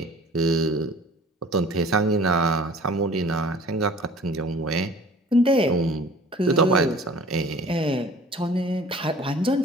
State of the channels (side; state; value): both; normal; correlation 0.47